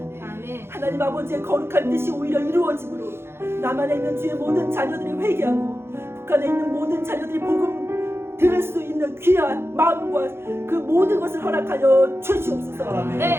하나님 아버지의 거룩한 뜻이 오히려 이루어짐으로 남한에 있는 주의 모든 자녀들이 회개하고 북한에 있는 모든 자녀들이 복음 들을 수 있는 귀한 마음과 그 모든 것을 허락하여 주시옵소서.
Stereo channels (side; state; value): left; late; 0.12 ms